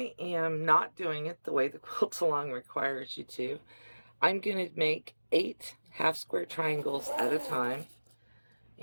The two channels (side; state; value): both; inverted; correlation -1.00